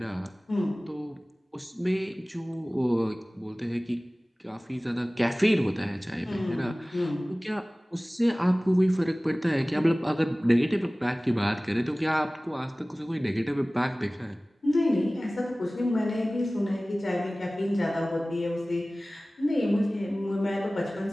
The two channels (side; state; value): both; normal; correlation 0.98